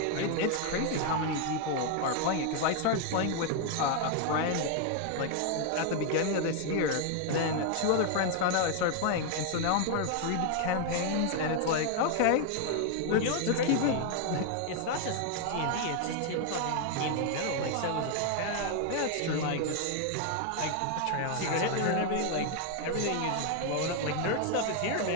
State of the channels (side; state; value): both; different; correlation 0.00